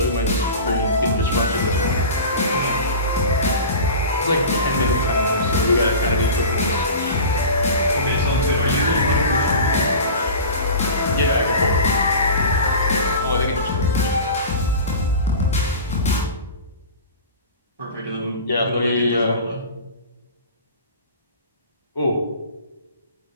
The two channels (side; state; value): both; inverted; correlation -0.35